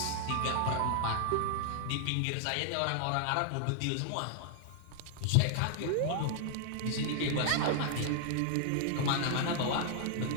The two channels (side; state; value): both; different; correlation -0.01